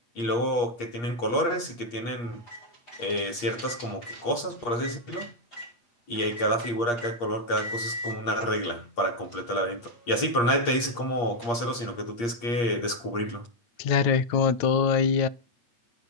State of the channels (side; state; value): right; late; 8.5 ms